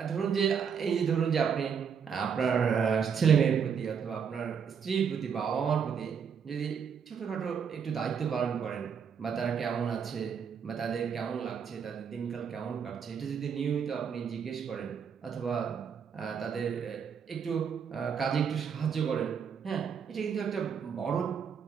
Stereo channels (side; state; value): left; quieter; 7.0 dB